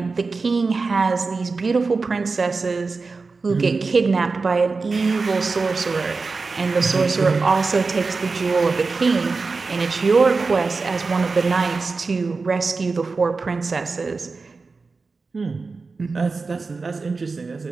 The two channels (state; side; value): quieter; left; 4.2 dB